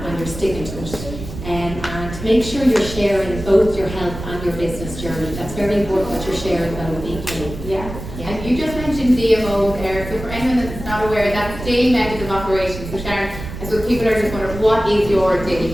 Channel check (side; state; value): right; noise; rumble, 10 dB below the sound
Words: you're sticking to it. And make sure you're sharing both your health and your business journey. That's very important that you're sharing both equally. Yeah. And you just mentioned DMO there. So for anyone that's not aware, that's daily method of operation. So Sharon, I suppose people are just wondering, what is your daily